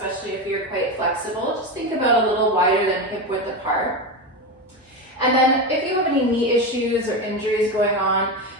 if you're quite flexible. Just think about a little wider than hip width apart. And then if you have any knee issues or injuries going on,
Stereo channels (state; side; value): normal; both; correlation 0.17